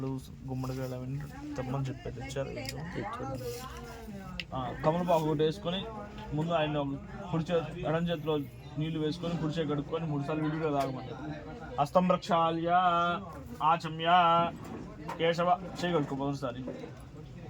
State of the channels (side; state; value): both; identical; correlation 1.00